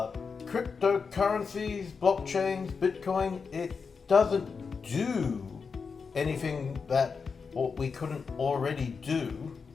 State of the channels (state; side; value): quieter; right; 5.3 dB